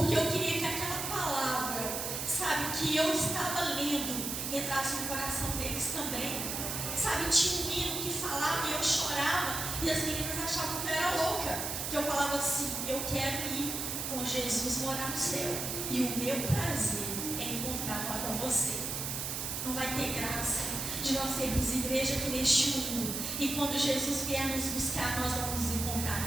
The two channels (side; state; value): right; noise; hiss, 3 dB below the sound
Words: eu queria que aquela palavra, sabe, que eu estava lendo, entrasse no coração deles também. Sabe, tinha um hino que falava e eu chorava e as meninas achavam que eu era louca, que eu falava assim: eu quero ir com Jesus morar no céu e o meu prazer é encontrar lá com você. Não vai ter graça de nós sermos igreja aqui neste mundo e quando Jesus vier nos buscar, nós vamos nos